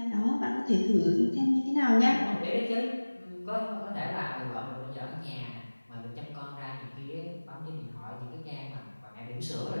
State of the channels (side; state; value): both; inverted; correlation -1.00